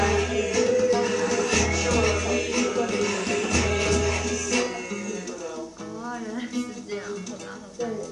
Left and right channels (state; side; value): identical; both; correlation 1.00